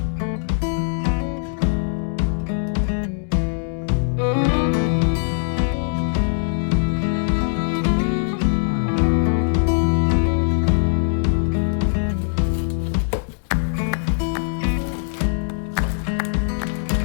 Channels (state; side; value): silent; right; digital silence